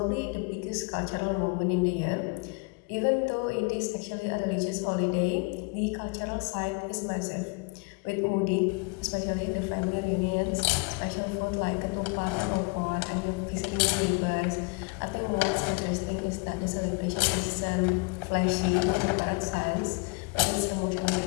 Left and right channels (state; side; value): quieter; right; 30.7 dB